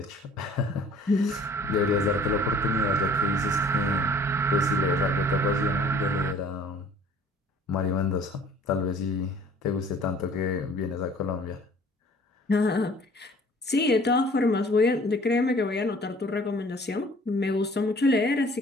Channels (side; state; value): both; normal; correlation 0.52